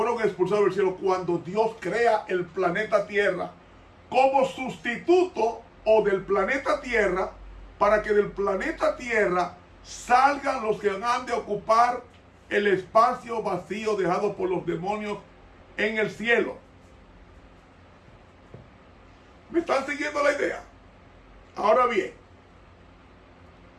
expulsados del cielo, cuando Dios crea el planeta Tierra como sustituto o del planeta Tierra, para que del planeta Tierra salgan los que han de ocupar el espacio vacío dejado por los demonios en el cielo. ¿Me están siguiendo la idea? Ahora bien,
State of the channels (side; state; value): both; identical; correlation 1.00